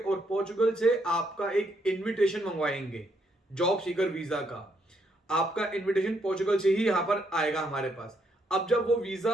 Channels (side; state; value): both; normal; correlation 0.74